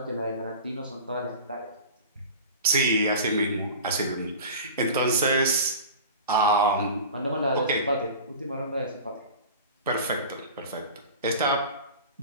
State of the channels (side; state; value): both; inverted; correlation -0.35